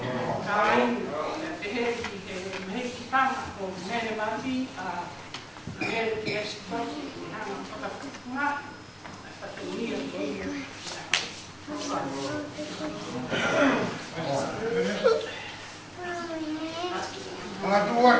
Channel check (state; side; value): identical; both; correlation 1.00